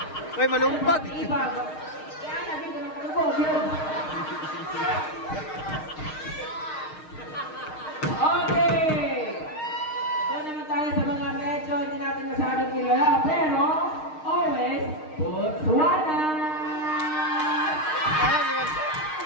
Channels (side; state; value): right; late; 6.5 ms